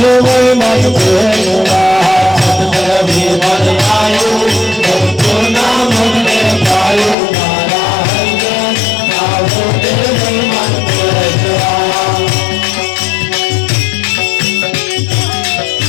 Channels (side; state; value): right; drops out; at 7.2 s